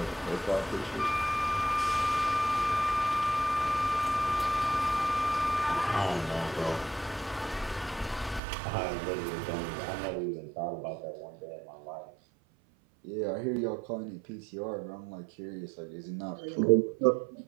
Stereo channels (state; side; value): drops out; left; at 8.4 s